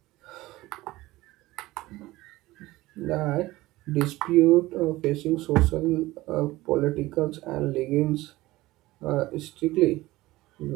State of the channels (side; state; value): left; quieter; 18.4 dB